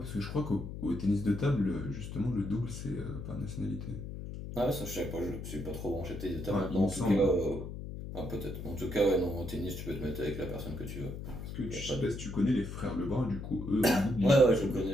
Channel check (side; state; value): left; noise; hum, 8 dB below the sound